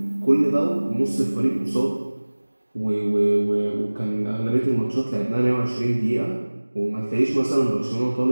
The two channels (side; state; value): both; inverted; correlation -1.00